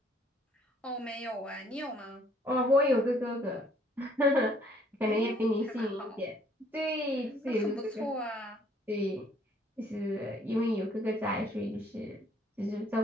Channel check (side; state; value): both; normal; correlation 0.62